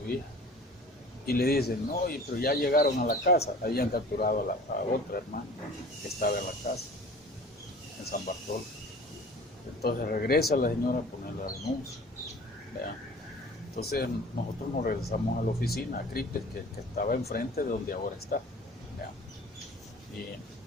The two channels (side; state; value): both; normal; correlation 0.44